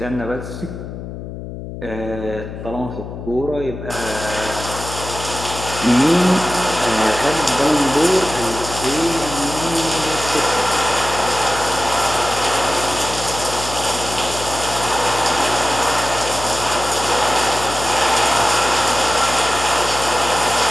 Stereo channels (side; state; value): left; noise; hum, 9 dB below the sound